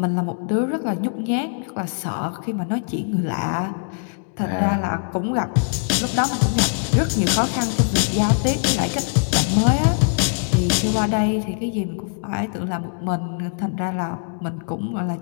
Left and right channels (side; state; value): right; silent; digital silence